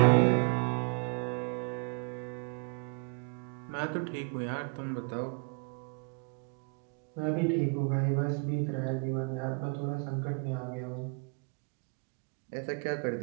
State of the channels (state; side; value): quieter; left; 37.8 dB